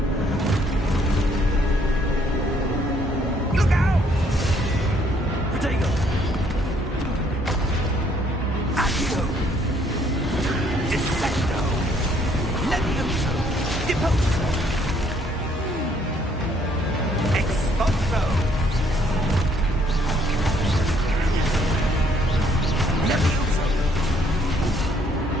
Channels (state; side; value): normal; both; correlation 0.66